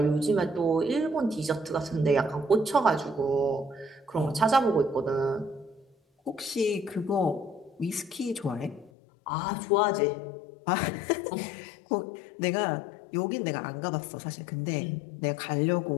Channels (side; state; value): right; drops out; at 8.9 s